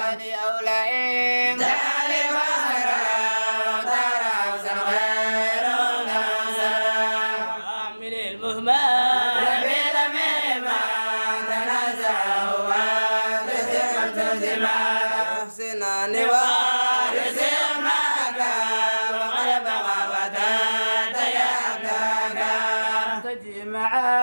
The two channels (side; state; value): both; inverted; correlation -1.00